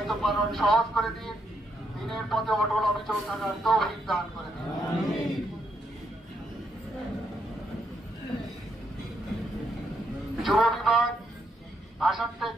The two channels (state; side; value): normal; both; correlation 0.77